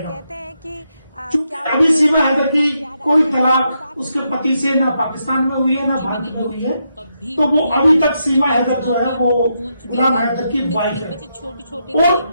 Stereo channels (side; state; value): both; inverted; correlation -0.82